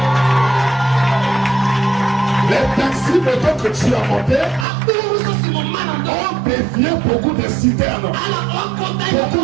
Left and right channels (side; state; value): left; drops out; at 4.7 s